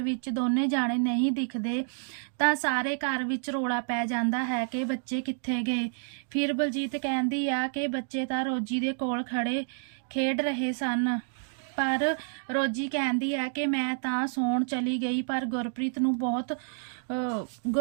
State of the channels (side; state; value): left; silent; digital silence